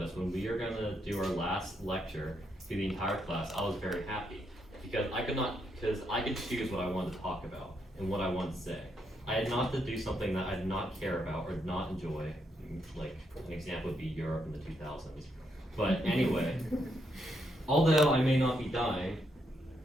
us when we were gonna do our last lecture to the entire class, I was very happy. Because I could choose what I wanted to talk about and what I wanted to say. I had not to do something that I did not care about or did not enjoy, like an example would be Europe in the 2000s. But anyway, although I may not be dying,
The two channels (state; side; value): normal; both; correlation 0.78